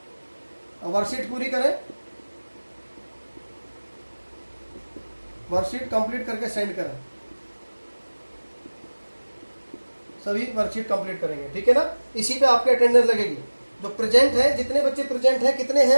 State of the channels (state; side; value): inverted; both; correlation -1.00